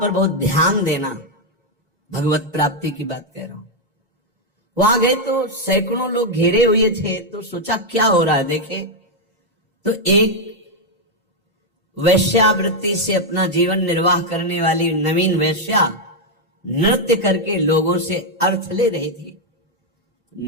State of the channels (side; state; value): both; normal; correlation 0.01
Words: पर बहुत ध्यान देना, भगवत प्राप्ति की बात कह रहा हूं। वहां गए तो सैकड़ों लोग घेरे हुए थे, तो सोचा क्या हो रहा है देखे, तो एक वैश्यावृत्ति से अपना जीवन निर्वाह करने वाली नवीन वैश्या नृत्य करके लोगों से अर्थ ले रही थी।